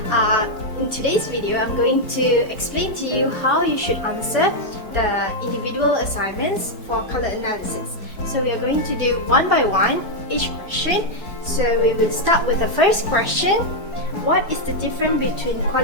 In today's video, I'm going to explain to you how you should answer the individual assignments for color analysis. So we are going to do one by one each question. So we will start with the first question. What is the difference between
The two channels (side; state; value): right; late; 4.8 ms